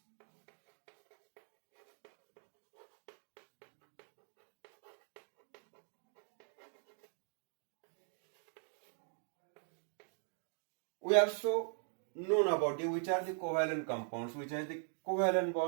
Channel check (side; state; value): left; silent; 50 dB below the other